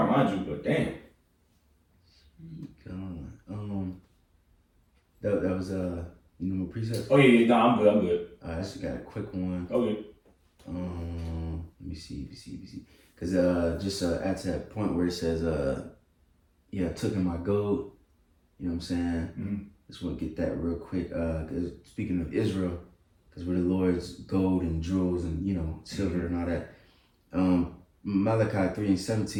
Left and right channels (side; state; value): both; identical; correlation 1.00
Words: mind you, but damn. That was you know, precepts. Oh yeah, no, I'm good. I actually got a quick one. Okay. Let me see. Cause just at that point where it says took in my gold. You know what I'm saying? Mm-hmm. Just want to get that real quick. Cause speaking of Israel, cause we're the Lord's gold and jewels and silver and all that. Malachi